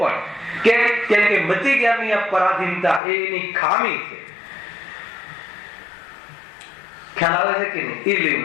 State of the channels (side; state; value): right; drops out; at 3.0 s